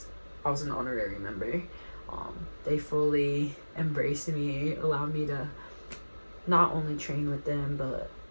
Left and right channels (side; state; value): both; inverted; correlation -1.00